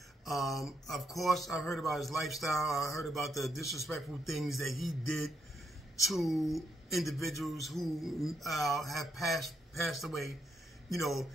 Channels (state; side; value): normal; both; correlation 0.78